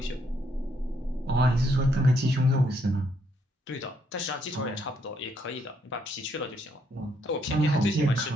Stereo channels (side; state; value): both; normal; correlation 0.72